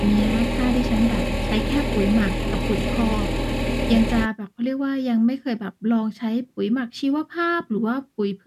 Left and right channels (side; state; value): both; identical; correlation 1.00